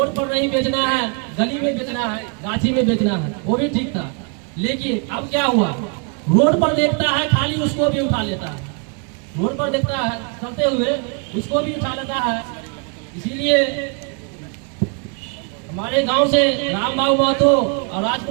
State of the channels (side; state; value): left; quieter; 38.4 dB